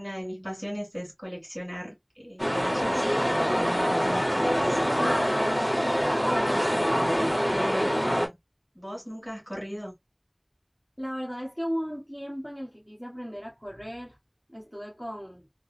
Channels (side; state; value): both; identical; correlation 1.00